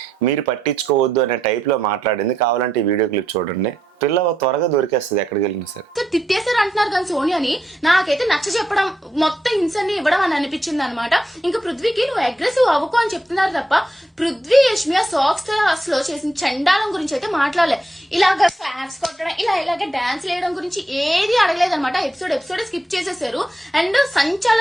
మీరు పట్టించుకోవద్దు అనే టైప్లో మాట్లాడింది. కావాలంటే ఈ వీడియో క్లిప్ చూడండి. పిల్ల త్వరగా దొరికేస్తుంది ఎక్కడికి వెళ్ళినా సరే. తిట్టేశారు అంటున్నారు కానీ సోనియాని నాకైతే నచ్చ చెప్పడం, మొత్తం హింసని ఇవ్వడం అని అనిపించింది అనమాట. ఇంకా పృథ్వీకి నువ్వు అగ్రెసివ్ అవ్వకు అని చెప్తున్నారు తప్ప పృథ్వీ యష్మియా సాక్స్ లో చేసిన చండాలం గురించి అయితే మాట్లాడలే. ఇలాగ ఫ్లాగ్స్ కొట్టడం, ఇలాగ డాన్స్ వేయడం గురించి ఏది అడగలేదు అనమాట. ఎపిసోడ్ స్కిప్ చేసేసారు. అండ్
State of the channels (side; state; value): both; normal; correlation 0.81